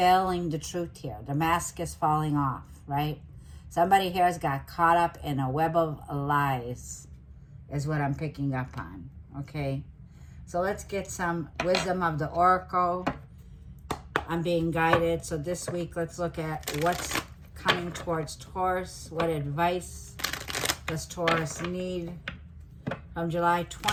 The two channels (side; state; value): both; identical; correlation 1.00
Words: the truth here. The mask is falling off, right? Somebody here has got caught up in a web of lies is what I'm picking up on, okay? So let's get some wisdom of the oracle. I'm being guided. So this week, let's look at what's coming towards Taurus. What advice does Taurus need from July